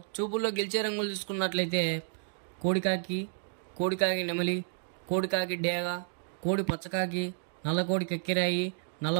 చూపుల్లో గెలిచే రంగులు చూసుకున్నట్లయితే కోడికాకి నెమలి, కోడికాకి డేగ, కోడి పచ్చకాకి, నల్ల కోడి కక్కిరాయి,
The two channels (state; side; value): silent; left; digital silence